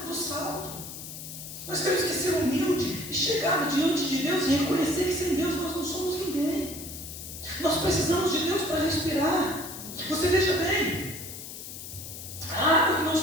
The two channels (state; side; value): noise; left; hiss, 11 dB below the sound